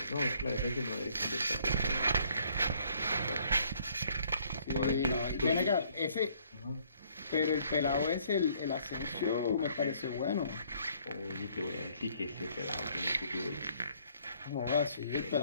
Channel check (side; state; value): both; inverted; correlation -0.64